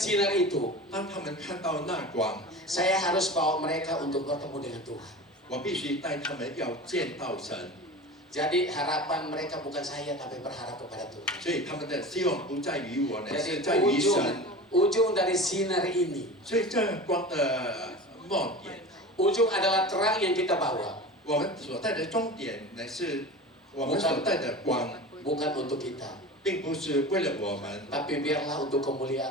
itu, 当他们看到那光， saya harus bawa mereka untuk bertemu dengan Tuhan. 我必须带他们要见到神。 Jadi harapan mereka bukan saya tapi berharap kepada Tuhan. 所以他们的希望不在于我呢， Jadi 是在于神。 ujung dari sinar ini, 所以这光的末点， ujung adalah terang yang kita bawa, 我们所带的终点呢，是我们所带的光， bukan untuk kita, 并不是为了我们， tapi biarlah untuk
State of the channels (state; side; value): normal; both; correlation 0.33